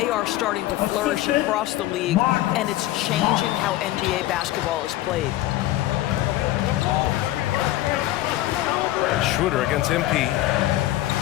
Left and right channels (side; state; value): right; quieter; 15.4 dB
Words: are starting to flourish across the league, and it's changing how NBA basketball is played. Schroeder against MP.